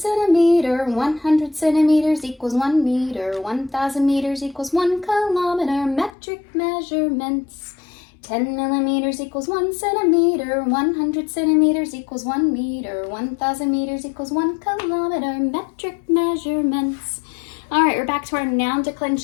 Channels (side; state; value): right; drops out; at 6.1 s